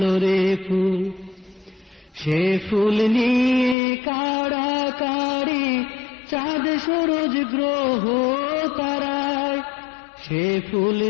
রে ফুল। সে ফুল নিয়ে কাড়াকাড়ি চাঁদ সূরজ গ্রহ তারায়, সে ফুল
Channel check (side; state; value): right; drops out; at 3.8 s